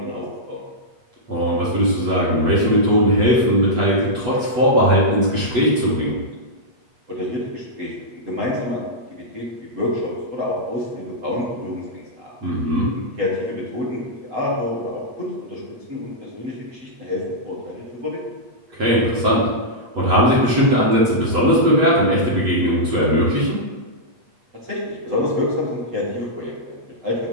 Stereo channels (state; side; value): late; left; 8.1 ms